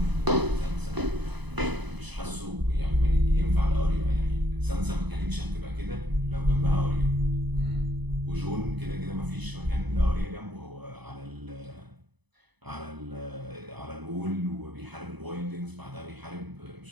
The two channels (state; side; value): late; left; 0.99 ms